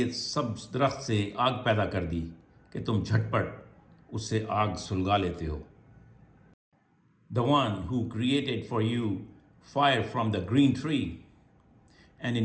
سبز درخت سے آگ پیدا کر دی کہ تم جھٹ پٹ اس سے آگ سلگا لیتے ہو. The one who created for you fire from the green tree, and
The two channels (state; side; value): identical; both; correlation 1.00